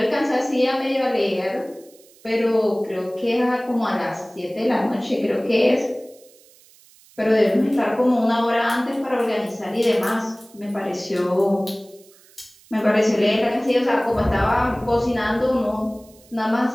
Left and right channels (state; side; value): noise; right; hiss, 27 dB below the sound